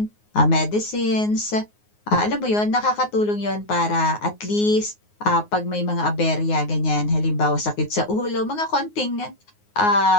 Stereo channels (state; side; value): late; right; 9.6 ms